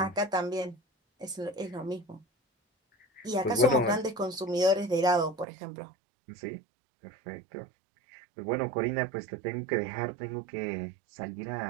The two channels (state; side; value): drops out; left; at 5.5 s